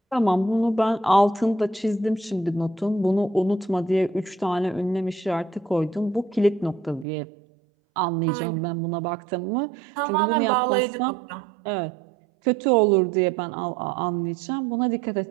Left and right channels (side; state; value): left; drops out; at 7.1 s